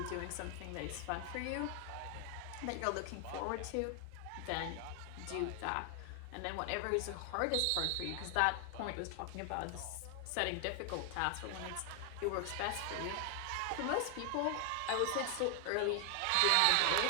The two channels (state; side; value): different; both; correlation 0.00